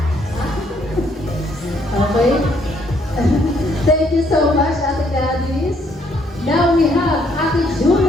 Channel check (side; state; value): both; normal; correlation 0.69